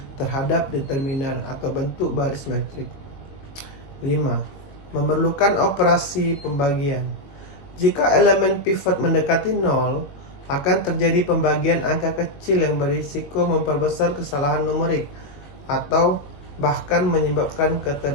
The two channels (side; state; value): right; late; 21 ms